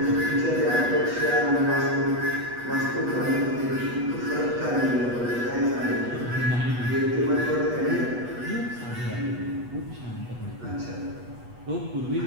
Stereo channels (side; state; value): left; late; 8.2 ms